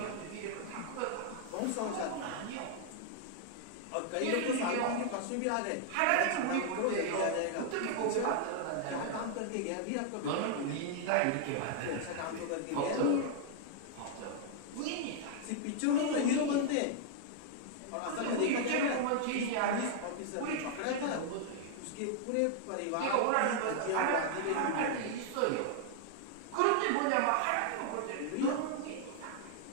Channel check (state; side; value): different; both; correlation 0.00